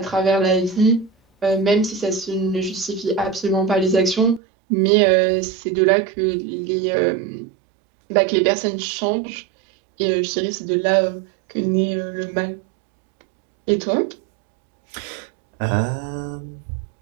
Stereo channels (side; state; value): left; drops out; at 4.4 s